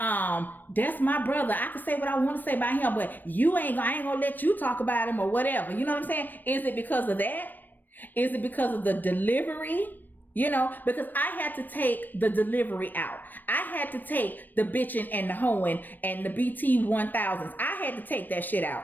my brother. I can say what I want to say about him, but I ain't gonna let you talk about him or whatever. You know what I'm saying? Is it because of that? Is it because of the delivery? Because I had to take the delivery out. I had to take the bitching and the hoeing and the BT 1000s. I had to take that shit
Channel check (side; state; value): right; late; 0.090 ms